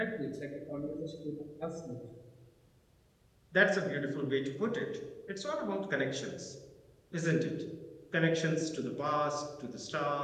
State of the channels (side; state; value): both; identical; correlation 1.00